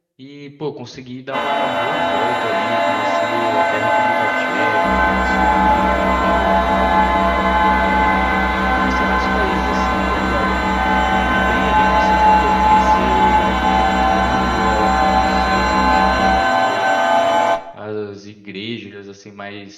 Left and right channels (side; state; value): both; identical; correlation 1.00